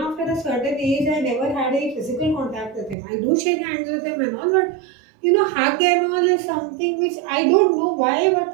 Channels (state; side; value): drops out; left; at 3.0 s